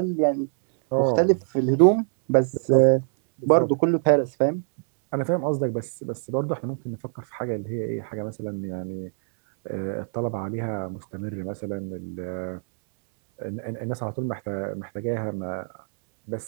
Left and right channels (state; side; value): silent; left; 62 dB below the other